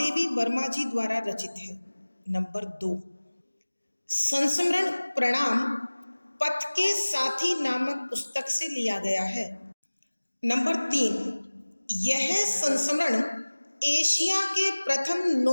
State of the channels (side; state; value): both; inverted; correlation -1.00